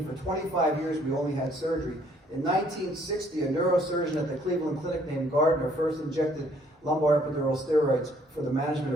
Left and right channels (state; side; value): normal; both; correlation 0.63